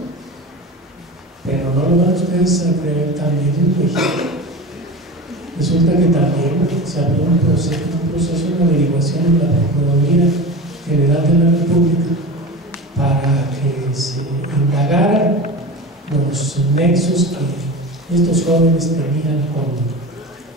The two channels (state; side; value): normal; both; correlation 0.30